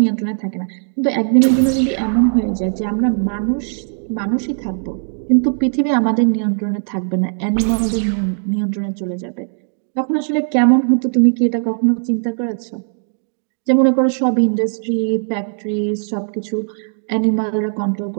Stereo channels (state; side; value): silent; left; digital silence